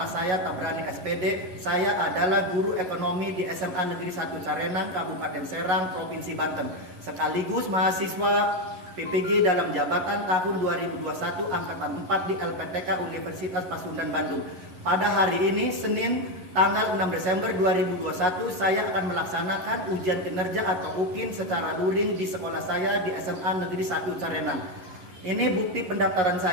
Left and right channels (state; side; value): late; left; 11 ms